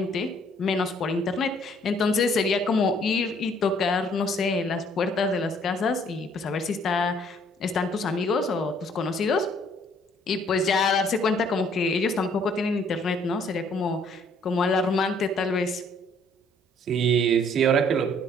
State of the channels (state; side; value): normal; both; correlation 0.62